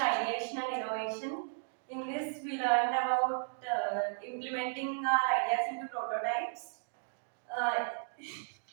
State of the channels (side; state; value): left; silent; digital silence